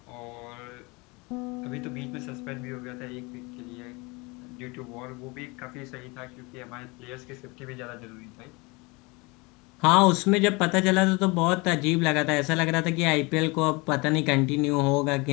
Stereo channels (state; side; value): quieter; right; 26.5 dB